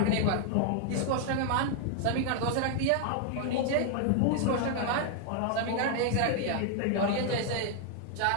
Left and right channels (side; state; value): both; different; correlation 0.00